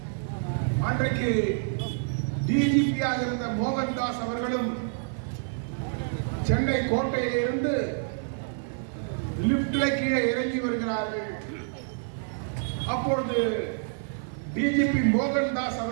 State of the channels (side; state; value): left; silent; 60 dB below the other